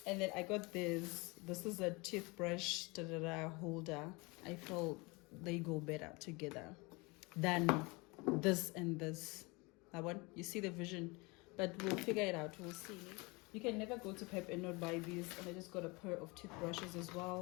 And then I got this. This is a toothbrush holder. I feel they go better together than this and this. That one, you see the vision, but we'll figure it out. We'll see. You can never go to Pep and not buy these. And I just got a pair of toothbrushes as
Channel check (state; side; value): quieter; right; 26.5 dB